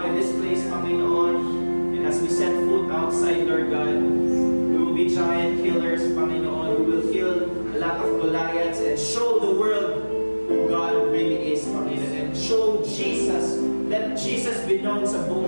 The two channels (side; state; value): both; inverted; correlation -1.00